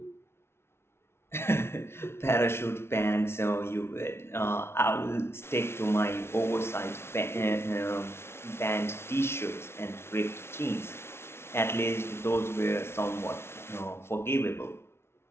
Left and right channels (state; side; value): late; right; 0.12 ms